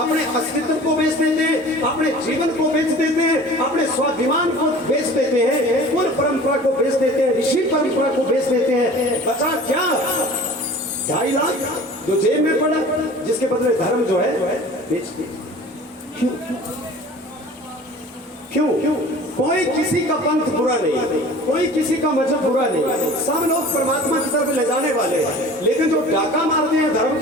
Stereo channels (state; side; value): normal; both; correlation 0.43